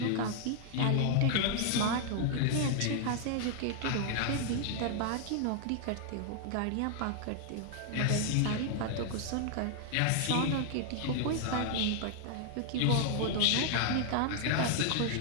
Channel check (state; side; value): different; both; correlation 0.00